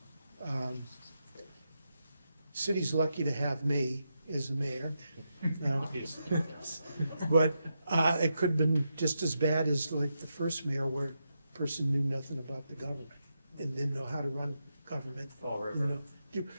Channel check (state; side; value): inverted; both; correlation -0.85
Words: City's lucky to have me as the mayor. Now, Obviously. but it could have been just as bad as like the first mayor, where a person knew nothing about the government and didn't know how to run government. Fall River.